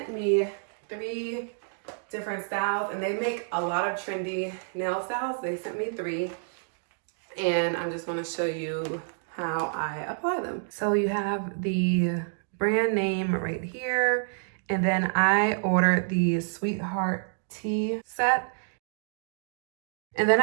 me 3 different styles, and they make a lot of trendy nail styles. They sent me 3, and I'm just going to show you how I apply them. So you have the brand name right here, and then I ordered the Sweetheart Tea set, and then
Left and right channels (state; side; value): silent; left; digital silence